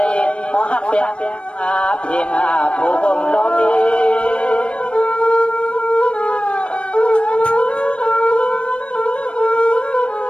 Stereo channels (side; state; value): right; late; 0.059 ms